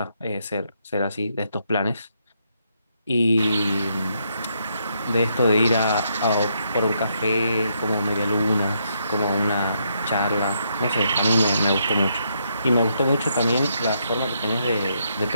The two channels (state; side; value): inverted; both; correlation -0.77